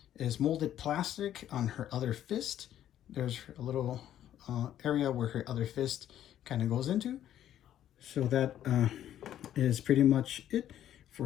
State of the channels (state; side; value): quieter; right; 11.4 dB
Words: is molded plastic on her other fist. There's a little area where her other fist kind of goes into. So that is pretty much it